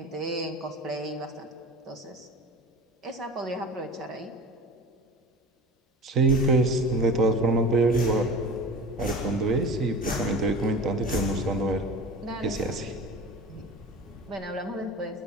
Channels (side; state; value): both; normal; correlation 0.35